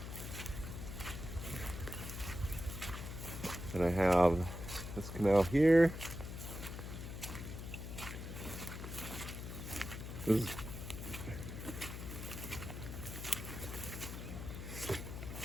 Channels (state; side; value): noise; left; hum, 7 dB below the sound